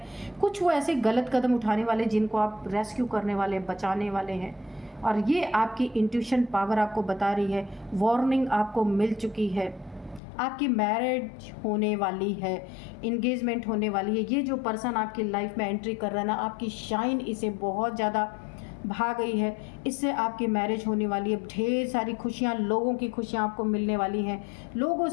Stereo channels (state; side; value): drops out; right; at 10.2 s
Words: कुछ वो ऐसे गलत कदम उठाने वाले जिनको आप रेस्क्यू करने वाले, बचाने वाले हैं। और ये आपकी इंट्यूशन पावर आपको बता रही है, वार्निंग आपको मिल चुकी है। आपकी मैरिज होने वाली है, इंगेजमेंट होने वाली है। ये जो पर्सन आपकी लाइफ में एंट्री कर रहा है ना, आपकी शाइन इसे बहुत ज़्यादा भा गई है, इससे आपकी मैरिज होने वाली है। ढेर सारी खुशियाँ, लोगों की खुशियाँ आपको मिलने वाली हैं, लोगों